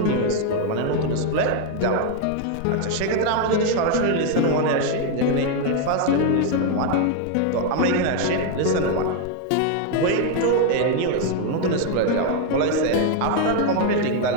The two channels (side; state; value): both; different; correlation 0.01